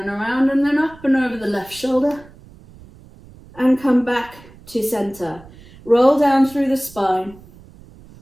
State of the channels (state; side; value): noise; right; rumble, 22 dB below the sound